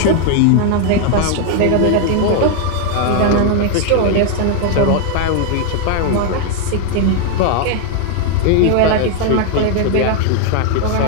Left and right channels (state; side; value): different; both; correlation 0.01